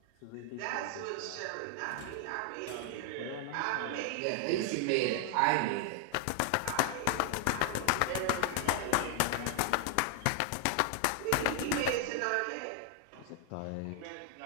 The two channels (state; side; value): different; both; correlation 0.00